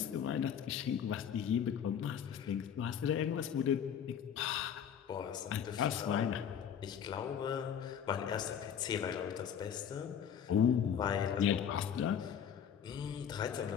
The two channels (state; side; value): quieter; right; 8.4 dB